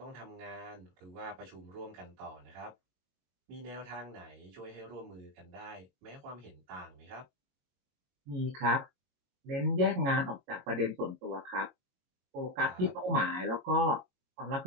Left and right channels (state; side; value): late; left; 22 ms